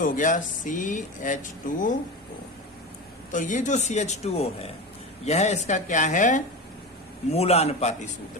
गया CH2O। तो ये जो CH2O है, यह इसका क्या है, मूलानुपाती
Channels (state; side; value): normal; both; correlation 0.25